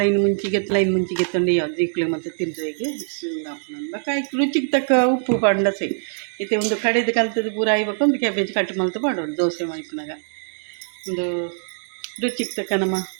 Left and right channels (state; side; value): silent; left; digital silence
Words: ಮುಂಚಿಗೆ ಮುಂಚಿಗೆ ತಂದು ಯಾವ್ದು ಜೀಕ್ಲೆ ಮತ್ತು ತಿಂದ್ರೆಗೆ ಬಕ್ಕ ರುಚಿಗೆ ತಕ್ಕ ಉಪ್ಪು ಪಂಡ ಸೈ ಇತ್ತೆ ಒಂದು ಕಡೆದು ಕಲ್ತದ್ದು ಪೂರ ಆಯ್ಬೇಕು ಒಂದು ಕ್ಯಾಬೇಜ್ ಕಟ್ ಮಲ್ತು ಮಾಡೋದು ದೋಸೆ ಮಲ್ಪನಾಗ ಒಂದು ರುಚಿಗೆ ತಕ್ಕ ನಮ್ಮ